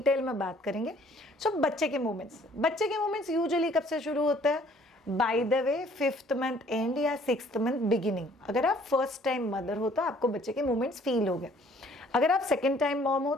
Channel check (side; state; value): both; normal; correlation 0.58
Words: में बात करेंगे। सो बच्चे के मोमेंट्स यूजुअली कब से शुरू होता है? By the way 5th month and या 6th मंथ बिगिनिंग। अगर आप फर्स्ट टाइम मदर हो तो आपको बच्चे के मोमेंट्स फील हो गए। अगर आप सेकेंड टाइम मॉम हो